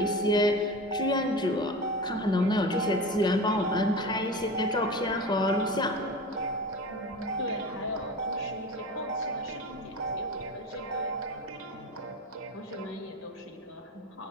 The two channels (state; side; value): normal; both; correlation 0.31